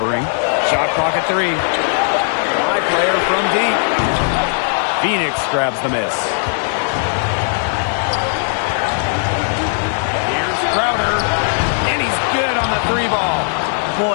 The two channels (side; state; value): right; silent; digital silence